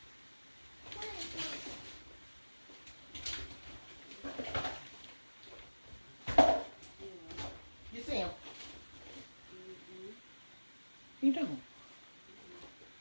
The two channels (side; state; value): both; inverted; correlation -1.00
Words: You see them? You don't?